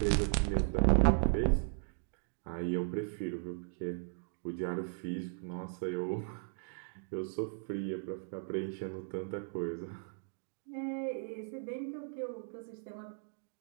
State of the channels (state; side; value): silent; left; digital silence